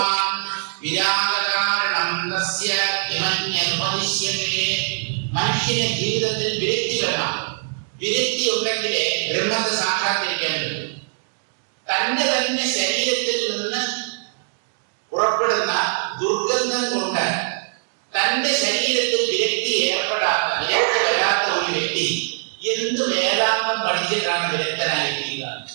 മനുഷ്യന്റെ ജീവിതത്തിൽ വിരക്തി വേണം. വിരക്തി ഉണ്ടെങ്കിലേ ബ്രഹ്മത്തെ സാക്ഷാത്കരിക്കാൻ പറ്റും. തന്റെ തന്നെ ശരീരത്തിൽ നിന്ന് പുറപ്പെടുന്ന ദുർഗന്ധം കൊണ്ട് തന്റെ ശരീരത്തിൽ വിരക്തി ഏർപ്പെടാത്ത, വിരക്തി വരാത്ത ഒരു വ്യക്തി എന്ത് വേദാന്തം പഠിച്ചിട്ടാണ് വിരക്തനായിരിക്കുക?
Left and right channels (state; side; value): silent; left; digital silence